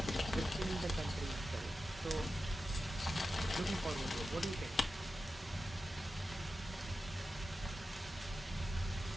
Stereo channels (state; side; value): normal; both; correlation 0.92